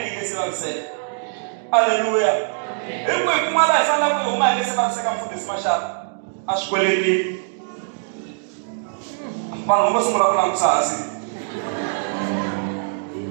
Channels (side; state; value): left; silent; digital silence